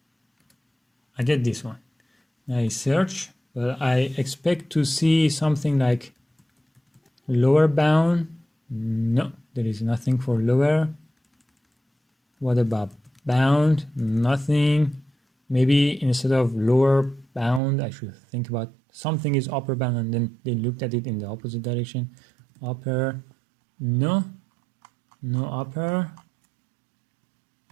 I get this one. I search, but I expect to see something like lower bound. No, there is nothing for lower. What about bound? Nothing. Maybe instead of lower bound, I should think about something is upper bound, and then they looked at it in the opposite direction. Upper, no upper.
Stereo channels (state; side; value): drops out; left; at 17.6 s